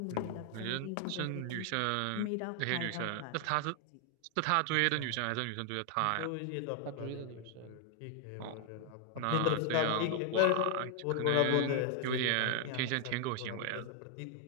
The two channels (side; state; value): both; different; correlation 0.00